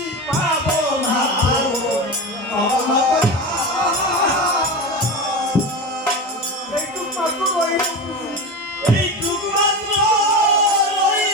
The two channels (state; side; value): normal; both; correlation 0.24